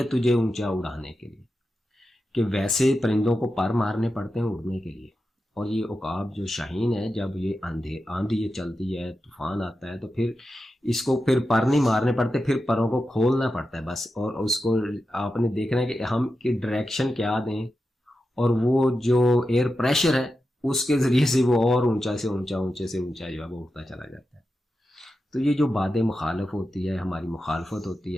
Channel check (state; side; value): normal; both; correlation 0.90